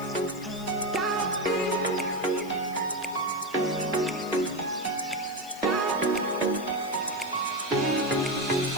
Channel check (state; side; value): noise; left; hiss, 19 dB below the sound